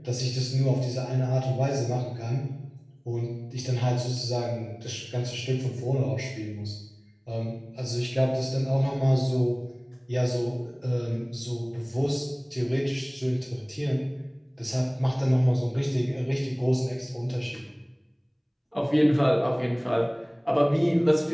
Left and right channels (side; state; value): both; identical; correlation 1.00